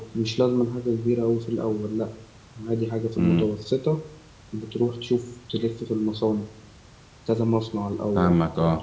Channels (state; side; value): identical; both; correlation 1.00